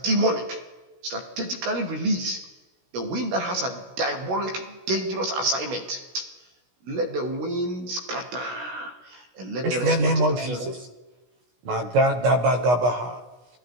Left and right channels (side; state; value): left; late; 16 ms